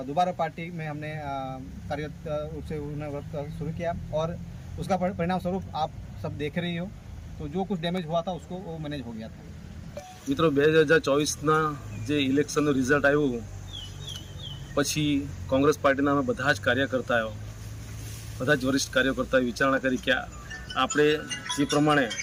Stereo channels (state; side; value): identical; both; correlation 1.00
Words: दोबारा पार्टी में हमने कार्यरत रूप से उन्हें वर्क शुरू किया और उसका परिणाम स्वरूप आप सब देख रही हो। तो जो कुछ डैमेज हुआ था उसको वो मैनेज हो गया था। मित्रों, 2024 જે ઇલેક્શનનું રિઝલ્ટ આવ્યું પછી કોંગ્રેસ પાર્ટીના અમે બધા જ કાર્યકર્તાઓ, બધા જ વરિષ્ઠ કાર્યકર્તાઓએ વિચારણા કરી કે આપણે જે પ્રમાણે